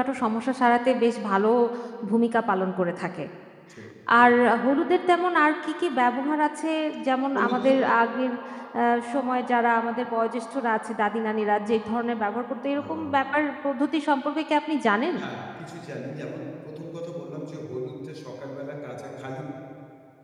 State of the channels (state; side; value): identical; both; correlation 1.00